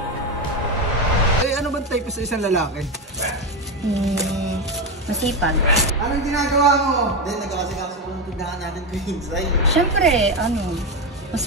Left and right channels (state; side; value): normal; both; correlation 0.13